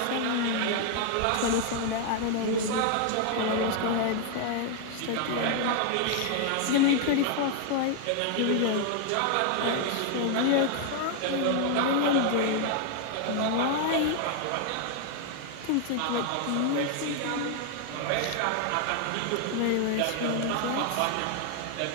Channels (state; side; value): different; both; correlation 0.00